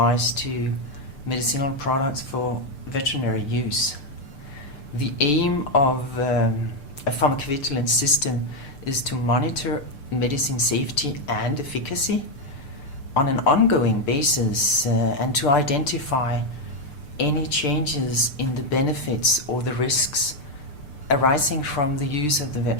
to medicinal products for veterinary use. The aim of a pharmacovigilance system is to monitor medicine safety and efficacy on an ongoing basis and to identify any changes in the benefits or the risks arising from the use of the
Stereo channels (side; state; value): right; late; 6.8 ms